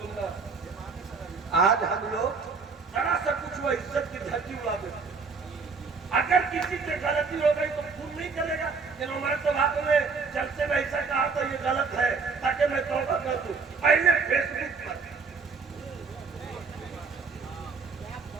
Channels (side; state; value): left; quieter; 4.8 dB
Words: آج ہم لوگ ذرا سا کچھ وہ عزت کی دھرتی اڑا دیتے. اگر کسی سے غلطی ہو گئی تو خون نہیں کرے گا کہ عمر تو بات میں جلسے میں ایسا کہا تو یہ غلط ہے تاکہ میں توبہ کر دوں. پہلے فیس بک پر